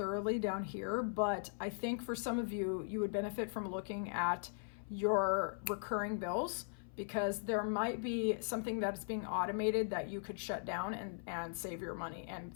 down here, but I think for some of you, you would benefit from looking at your recurring bills, because there might be something that's being automated that you could shut down and save your money and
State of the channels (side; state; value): right; silent; 52 dB below the other